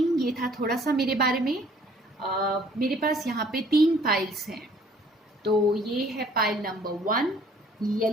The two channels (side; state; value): both; normal; correlation 0.58